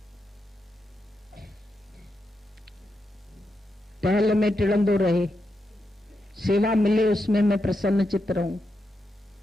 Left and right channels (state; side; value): normal; both; correlation 0.85